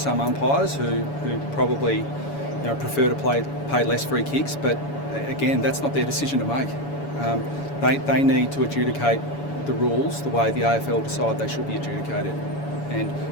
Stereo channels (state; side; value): late; right; 7.0 ms